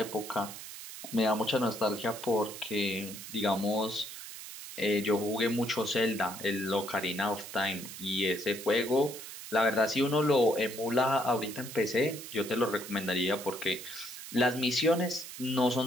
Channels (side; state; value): right; noise; hiss, 11 dB below the sound